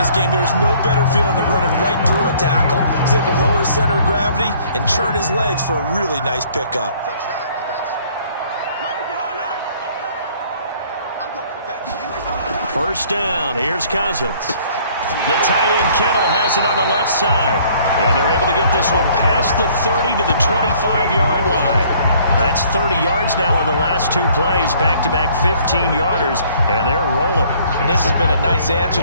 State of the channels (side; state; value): both; inverted; correlation -0.58